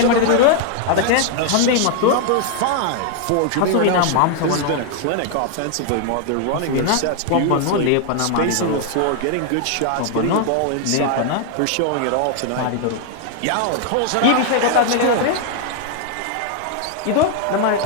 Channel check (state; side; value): different; both; correlation 0.00